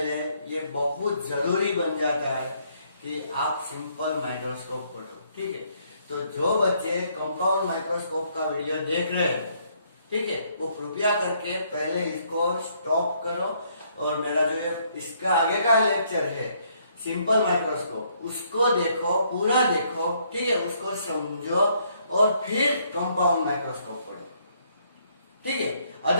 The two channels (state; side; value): inverted; both; correlation -0.69